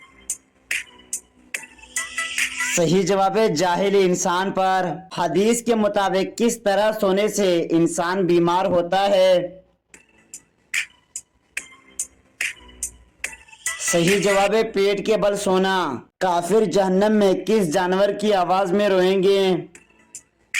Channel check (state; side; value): identical; both; correlation 1.00